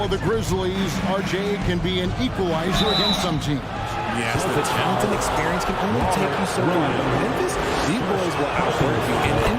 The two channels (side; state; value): both; identical; correlation 1.00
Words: of the Grizzlies, RJ, can be an equalizer against some teams. Yes, the talent and experience can only take you so far. Memphis, these boys will outwork you. And